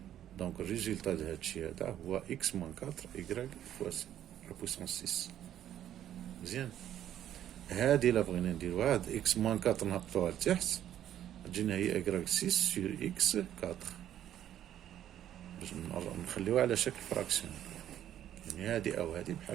دونك الريزلتا د هادشي هذا هو X moins 4 Y fois la puissance 6. مزيان. هادي إلا بغينا نديروها هاد X moins 4 نهبطوها لتحت تجينا هي Y 6 sur X 4 باش نخليوها على شكل فراكسيون. يعني هادي أو هادي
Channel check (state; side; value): quieter; left; 11.2 dB